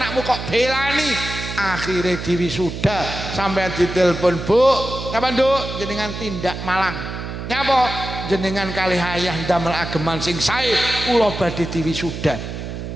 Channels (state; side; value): noise; right; hum, 7 dB below the sound